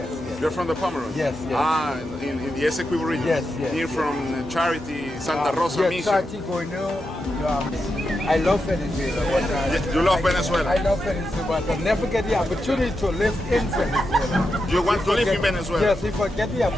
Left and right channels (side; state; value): both; normal; correlation 0.87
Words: yes. You're from the Pomeroon? Yes, yes. Ah, in the Esequibo region? Yes, yes. Near from Charity, Santa Rosa yes, Mission? Charity, I love Venezuela. You love Venezuela? I love Venezuela, but I never get the opportunity to live in Venezuela. You want to live in Venezuela? Yes, if I get the